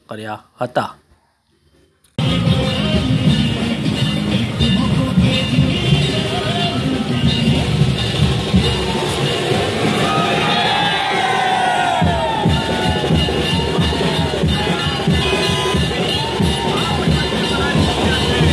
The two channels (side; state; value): both; identical; correlation 1.00